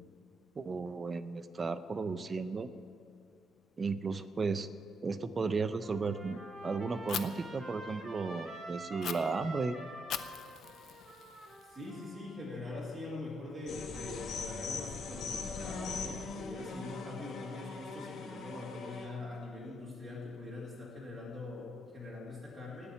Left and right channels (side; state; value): both; normal; correlation 0.79